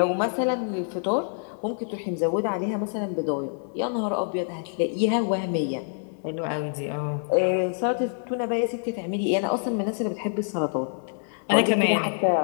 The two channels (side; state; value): right; silent; 61 dB below the other